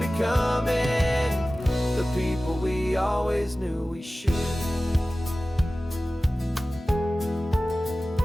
the people we always knew we should.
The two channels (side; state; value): both; normal; correlation 0.96